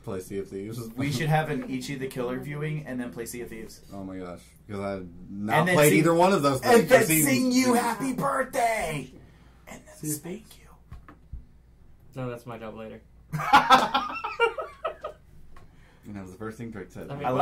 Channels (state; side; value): identical; both; correlation 1.00